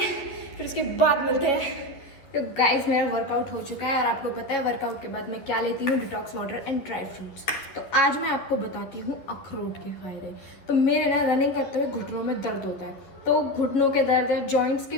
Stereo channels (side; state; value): right; late; 11 ms